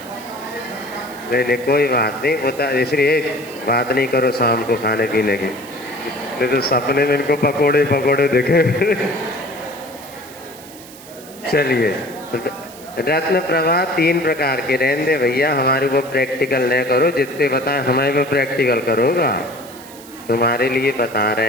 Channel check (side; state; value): right; noise; hiss, 19 dB below the sound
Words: नहीं नहीं कोई बात नहीं, बता, इसलिए बात नहीं करो शाम को खाने पीने की, नहीं तो सपने में इनको पकोड़े पकोड़े दिखे। चलिए, रत्न प्रभा 3 प्रकार के, रहने दे भैया, हमारे को प्रैक्टिकल न करो, जितने बताए हमारे को प्रैक्टिकल करोगा, तुम्हारे लिए बता